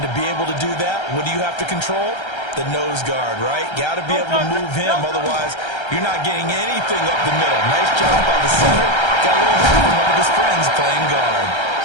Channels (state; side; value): late; right; 1.3 ms